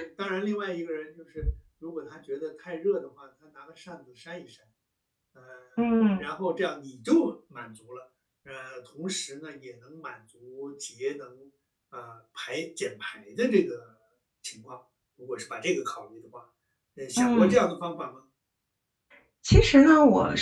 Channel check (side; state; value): both; identical; correlation 1.00